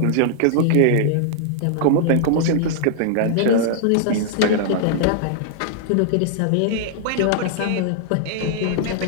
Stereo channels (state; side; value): different; both; correlation -0.01